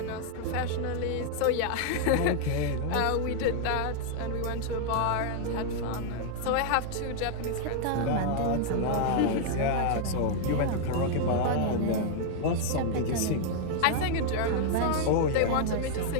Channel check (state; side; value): different; both; correlation -0.01